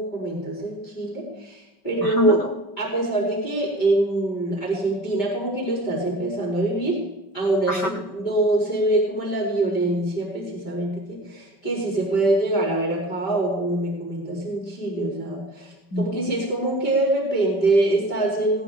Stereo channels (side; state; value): right; late; 5.2 ms